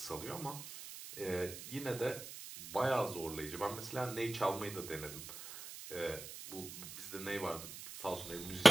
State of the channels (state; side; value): noise; right; hiss, 11 dB below the sound